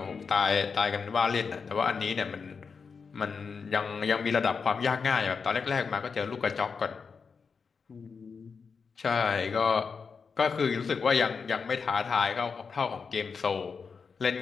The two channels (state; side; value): quieter; right; 5.5 dB